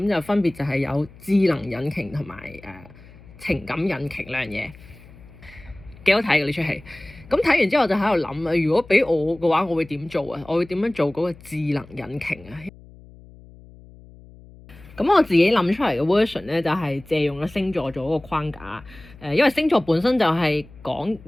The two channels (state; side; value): noise; left; hum, 21 dB below the sound